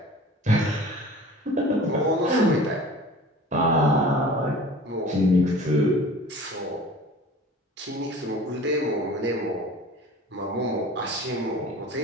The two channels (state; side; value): normal; both; correlation 0.42